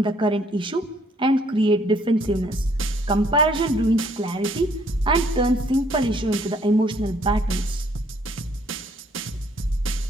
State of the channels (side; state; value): both; normal; correlation 0.64